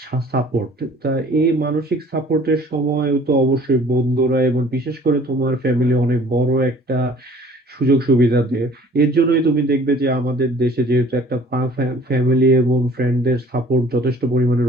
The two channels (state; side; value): normal; both; correlation 0.52